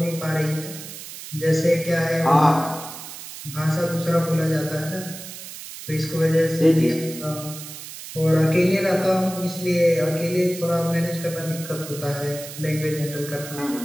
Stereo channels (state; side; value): noise; right; hiss, 12 dB below the sound